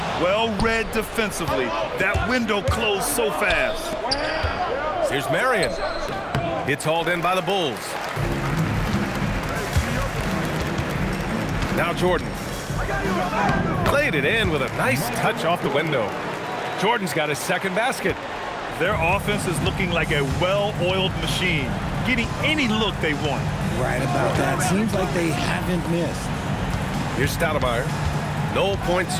Well read defensively. That window closed so fast. Here's Marion. It's hauled in by the Bulls. Now Jordan. Played it in with a nice touch off the window. Jordan's got his second basket. Their offense is looking like a well-oiled machine, getting any look they want. Right about that. Seems like they haven't missed. Here's Stoudemire. No points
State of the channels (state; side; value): identical; both; correlation 1.00